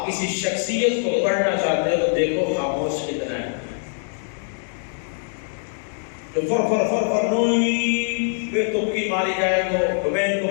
کسی شخصیت کو پڑھنا چاہتے ہیں تو دیکھو خاموش کتنا ہے. فر فر فر فر نوئی بے تبکی ماری جائے تو میں ان کو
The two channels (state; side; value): silent; right; 63 dB below the other